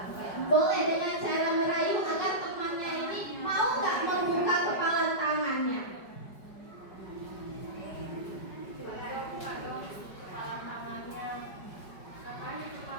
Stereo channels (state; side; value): late; right; 5.1 ms